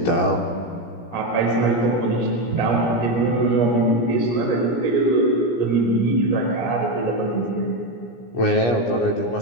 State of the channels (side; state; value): right; late; 17 ms